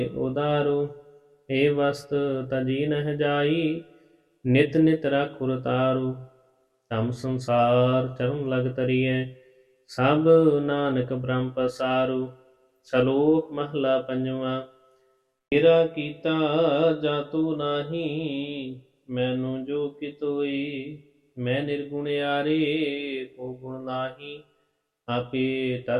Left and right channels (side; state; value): both; identical; correlation 1.00